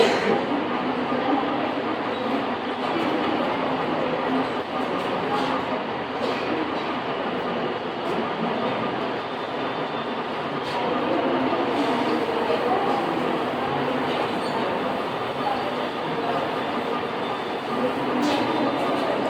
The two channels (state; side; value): identical; both; correlation 1.00